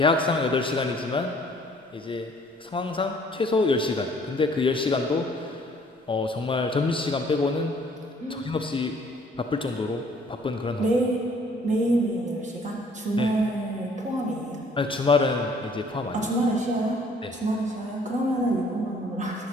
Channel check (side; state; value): both; normal; correlation 0.58